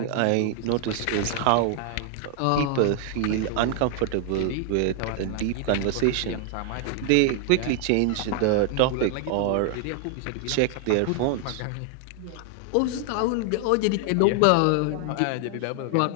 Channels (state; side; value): different; both; correlation 0.00